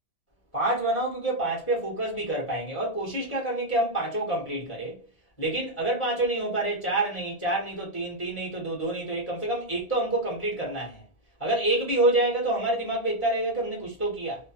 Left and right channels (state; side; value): late; right; 1.7 ms